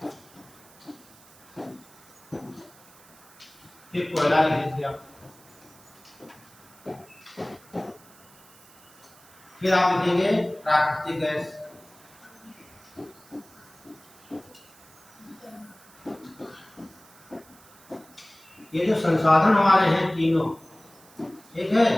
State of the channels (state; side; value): noise; right; hiss, 25 dB below the sound